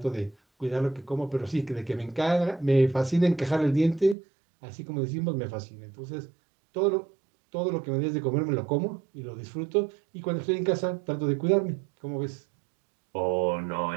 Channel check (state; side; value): drops out; left; at 4.2 s